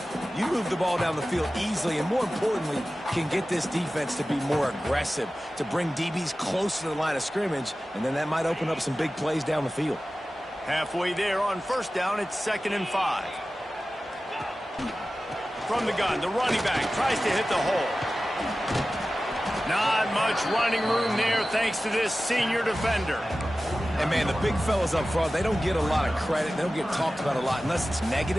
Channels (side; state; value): both; normal; correlation 0.95